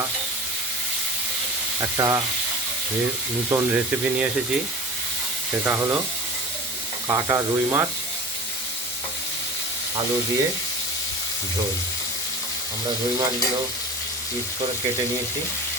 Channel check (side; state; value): both; normal; correlation 0.36